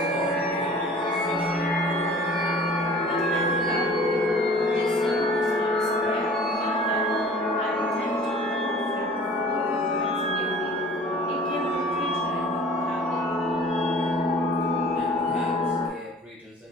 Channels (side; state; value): both; normal; correlation 0.46